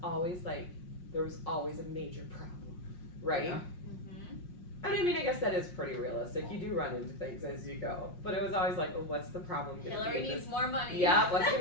always like, there was always a major problem, right? Yeah. I mean, I guess that is pretty realistic. You do run into things as you go. But it was always like, well, what's the problem? Hillary needs more money. Yeah, what's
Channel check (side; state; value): right; late; 5.6 ms